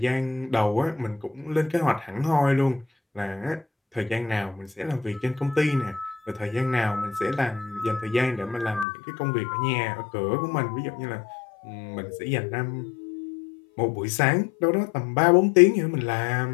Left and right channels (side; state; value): right; drops out; at 8.8 s